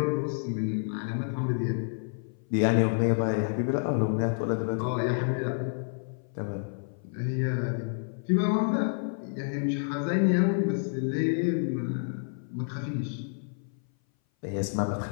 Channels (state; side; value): silent; right; 57 dB below the other